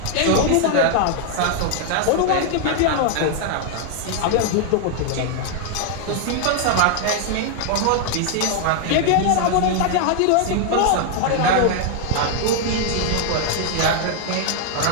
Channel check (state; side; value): different; both; correlation 0.00